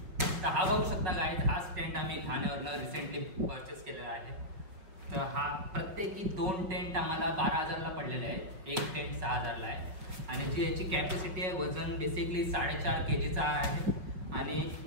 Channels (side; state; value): left; late; 5.6 ms